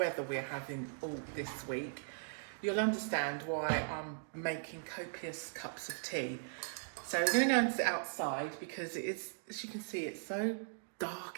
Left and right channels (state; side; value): silent; left; digital silence